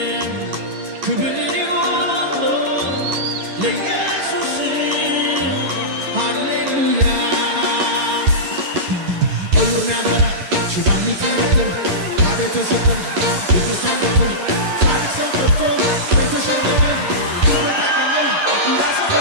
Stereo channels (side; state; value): left; late; 11 ms